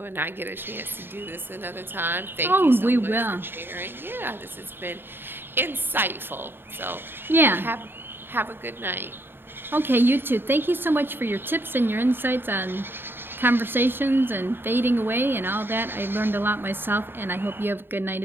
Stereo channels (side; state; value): left; late; 0.10 ms